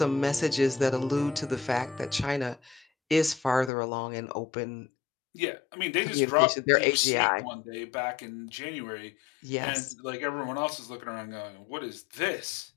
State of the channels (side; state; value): right; drops out; at 3.7 s